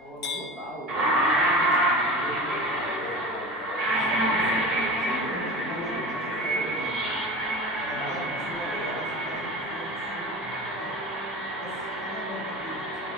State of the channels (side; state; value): both; normal; correlation 0.32